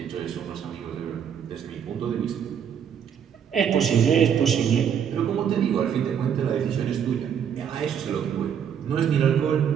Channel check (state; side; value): quieter; left; 8.2 dB